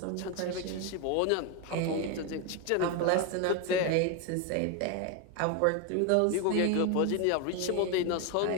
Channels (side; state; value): both; different; correlation 0.01